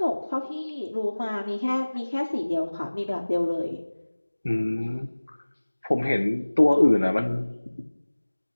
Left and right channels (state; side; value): inverted; both; correlation -1.00